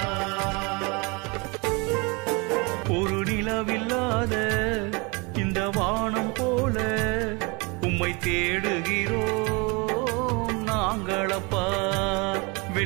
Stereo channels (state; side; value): quieter; left; 29.1 dB